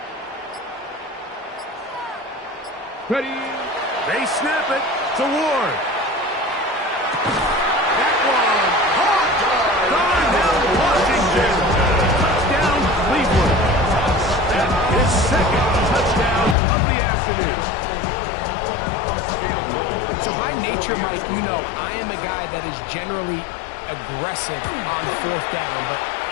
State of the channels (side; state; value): right; drops out; at 16.6 s